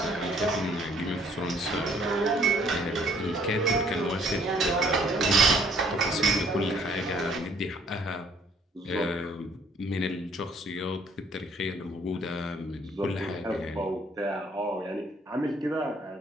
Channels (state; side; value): normal; both; correlation 0.62